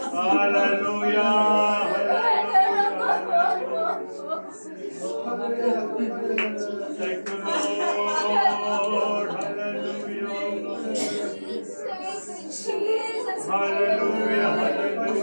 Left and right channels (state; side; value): inverted; both; correlation -1.00